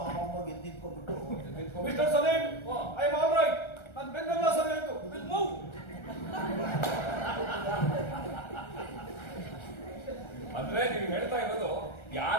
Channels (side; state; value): right; late; 1.3 ms